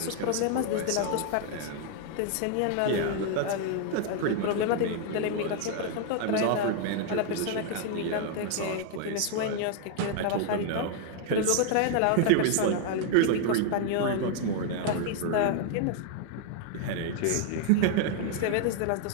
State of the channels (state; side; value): different; both; correlation 0.00